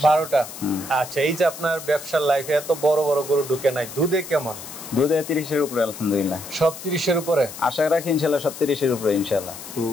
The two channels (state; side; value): noise; left; hiss, 12 dB below the sound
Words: 12টা। আচ্ছা, এই যে আপনার ব্যবসার লাইফে এত বড় বড় গরু ঢুকে নাই, দুধে কেমন? দুধে 30-এর উপরে আলহামদুলিল্লাহ। সব 30-এর উপরে আশা রাখি ইনশাআল্লাহ, সব 30-এর উপরে ইনশাআল্লাহ। তো